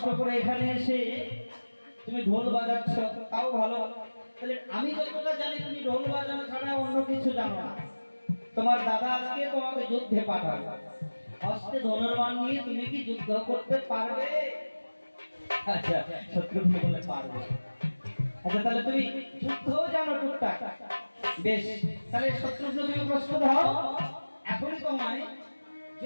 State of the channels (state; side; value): inverted; both; correlation -1.00